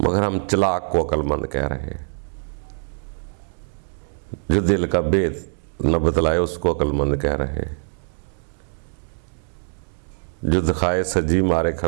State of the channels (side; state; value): left; silent; digital silence